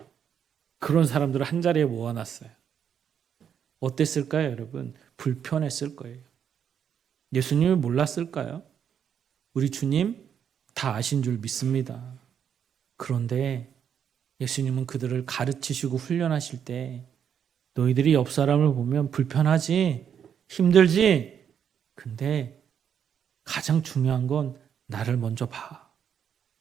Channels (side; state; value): left; quieter; 8.2 dB